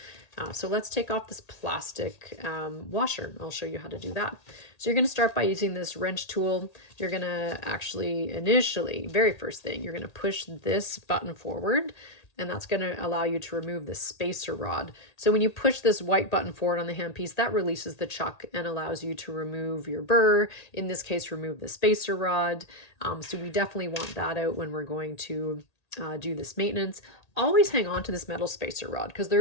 So let's take off this plastic washer. I'll show you how to do that. So you're going to start by using this wrench tool. You're going to actually initially, very first thing, you're going to push this button forward, and that's going to allow you to remove the spacer rod. So when you push this white button forward on the handpiece, that releases the chuck and allows you to remove your burr, in this case, remove the spacer rod. So we definitely want that out when we're going to do this maintenance. Always hang on to this metal spacer rod because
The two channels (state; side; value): late; right; 1.8 ms